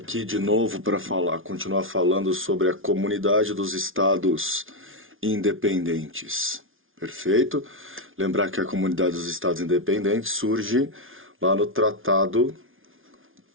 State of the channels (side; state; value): left; late; 0.58 ms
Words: de novo para continuar falando sobre a Comunidade dos Estados Independentes. Perfeito? Lembrar que a Comunidade dos Estados Independentes surge lá no Tratado